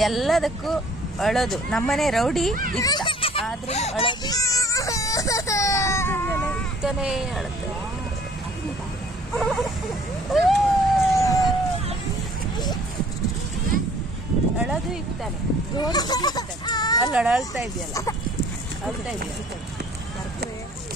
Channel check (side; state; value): both; normal; correlation 0.55